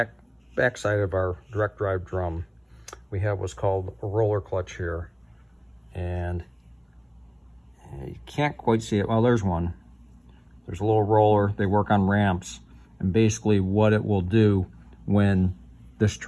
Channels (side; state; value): both; identical; correlation 1.00